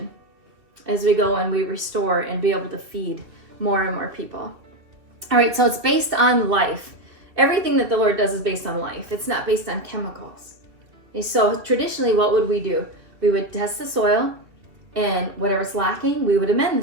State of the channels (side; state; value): left; late; 2.6 ms